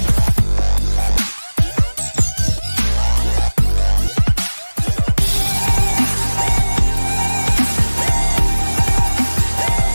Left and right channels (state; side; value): inverted; both; correlation -1.00